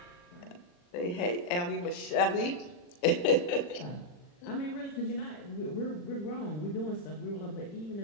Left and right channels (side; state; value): right; late; 40 ms